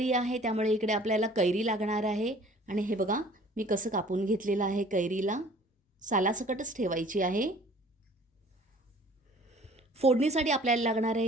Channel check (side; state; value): both; normal; correlation 0.51